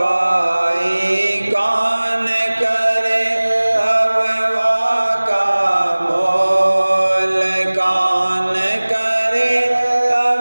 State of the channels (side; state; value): both; inverted; correlation -1.00